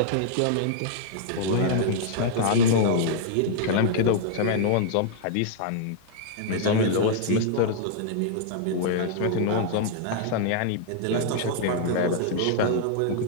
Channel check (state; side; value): different; both; correlation -0.01